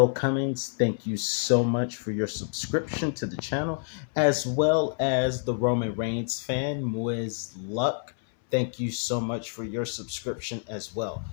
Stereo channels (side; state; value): right; silent; 60 dB below the other